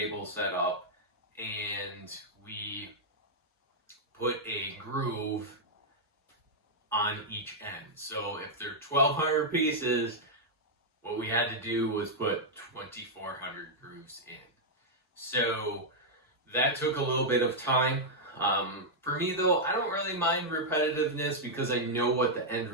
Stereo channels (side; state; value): both; normal; correlation -0.05